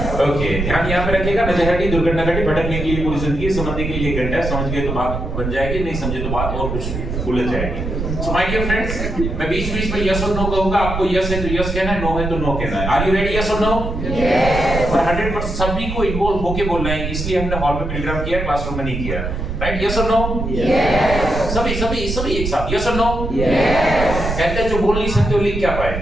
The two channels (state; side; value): noise; right; rumble, 4 dB below the sound